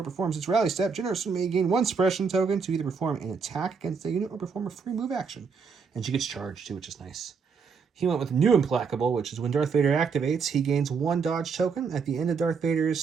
it performs its rally step. Jyn Erso may gain 1 suppression token to either perform an attack against a unit or perform a free move action. And she gets charged too, which is nice. He went with New Implacable, which is when Darth Vader activates, he gains 1 dodge token. At the end of Darth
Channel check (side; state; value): left; quieter; 5.5 dB